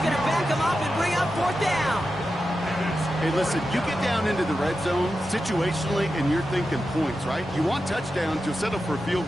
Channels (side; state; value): both; normal; correlation 0.90